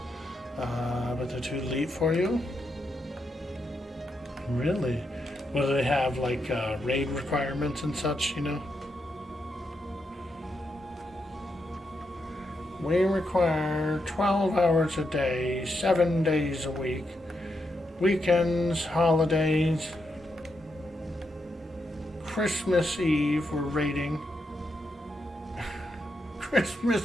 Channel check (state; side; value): normal; both; correlation 0.83